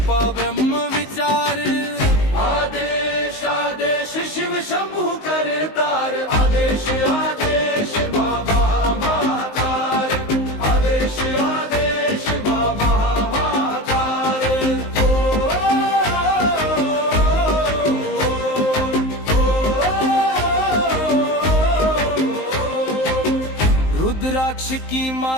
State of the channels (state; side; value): late; right; 19 ms